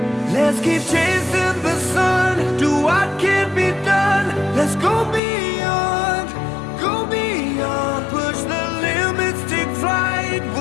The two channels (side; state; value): right; drops out; at 5.2 s